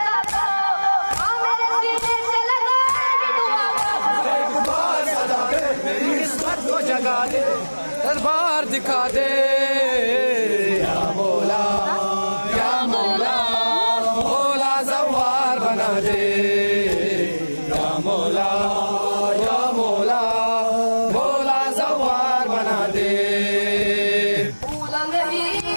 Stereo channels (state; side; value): inverted; both; correlation -1.00